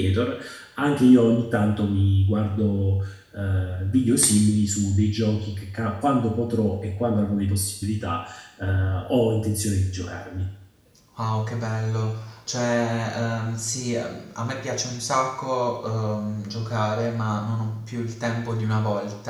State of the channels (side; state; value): both; identical; correlation 1.00